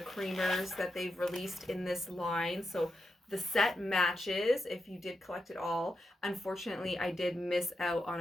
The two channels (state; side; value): normal; both; correlation 0.86